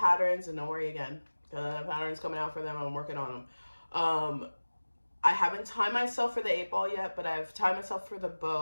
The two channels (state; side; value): inverted; both; correlation -1.00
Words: and don't worry again, the pattern's coming out for them. I'm working on them. I haven't timed myself for the 8-ball yet, but I've timed myself for the